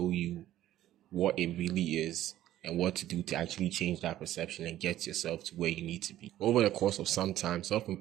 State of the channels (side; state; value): left; quieter; 13.4 dB